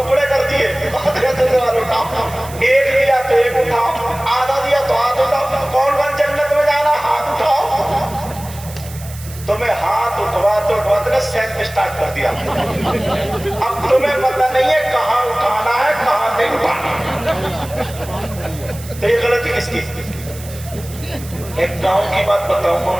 کر دیے، قادری سلسلے والے اٹھاؤ. ایک دیا تو ایک اٹھاؤ، آدھا دیا تو آدھا اٹھاؤ. کون کون جنت میں جانا؟ ہاتھ اٹھاؤ. تمہیں ہاتھ اٹھواتے نے سینک اسٹارٹ کر دیا. اب تمہیں پتہ نہیں ہے کہاں اٹھانا ہے کہاں نہیں اٹھانا. تو یہ غلطی کس کی؟ ایک گاؤں کی بات بتاؤں.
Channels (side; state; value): right; noise; hiss, 16 dB below the sound